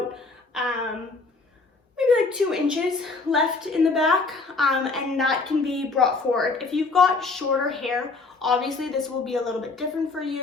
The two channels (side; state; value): right; quieter; 3.9 dB